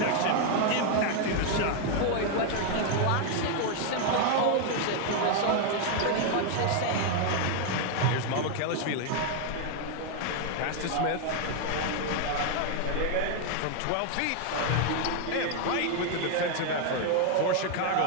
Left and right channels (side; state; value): both; different; correlation 0.00